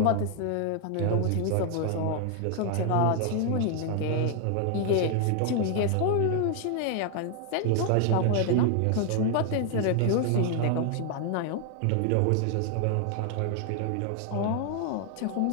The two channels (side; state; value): both; different; correlation 0.00